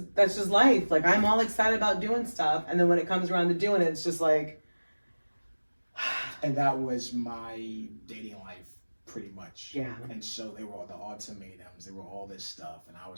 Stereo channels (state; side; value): inverted; both; correlation -1.00